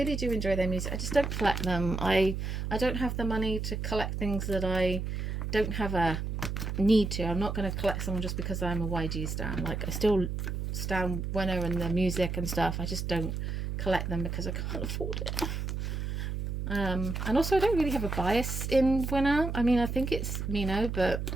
do enjoy their music. I just don't collect them. I don't have the money to collect things that I don't have a need to. I'm not going to collect someone just because I'm a YG stan. Like, I still stan Winner and their music and stuff. I just don't collect them because I can't afford it. And also I don't really have a bias in Winner. I mean, I think it's Mino, but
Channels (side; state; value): right; noise; hum, 3 dB below the sound